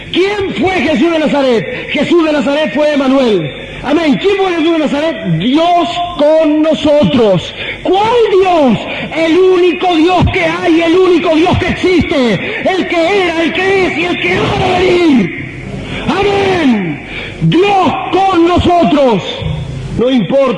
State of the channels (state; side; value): identical; both; correlation 1.00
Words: ¿Quién fue Jesús de Nazaret? Jesús de Nazaret fue Emmanuel. Amén. ¿Quién fue Jesús de Nazaret? Dios con nosotros. ¿Cuál Dios? El único Dios que hay, el único Dios que existe, el que era, el que es y el que ha de venir. Amén. Dios con nosotros. No